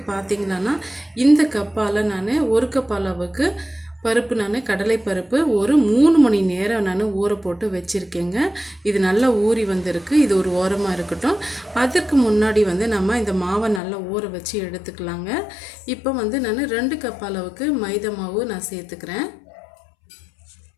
பார்த்திங்கன்னா இந்த கப்பால் நான் 1 கப் அளவுக்கு பருப்பு கடலை பருப்பு ஒரு 3 மணி நேரம் நான் ஊற போட்டு வச்சுருக்கேங்க. இது நல்லா ஊறி வந்திருக்கு. இது ஒரு ஓரமாக இருக்கட்டும். அதற்கு முன்னாடி நம்ம இந்த மாவை நல்லா ஊற வச்சு எடுத்துக்கலாங்க. இப்போ நான் 2 கப் அளவுக்கு மைதா மாவு நான் சேர்த்துக்கிறேன்.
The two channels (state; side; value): drops out; right; at 13.8 s